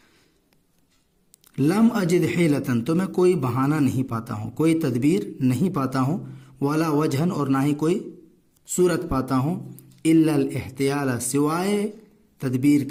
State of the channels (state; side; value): identical; both; correlation 1.00